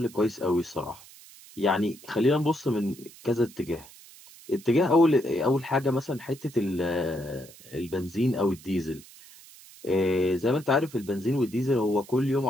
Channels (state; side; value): noise; right; hiss, 21 dB below the sound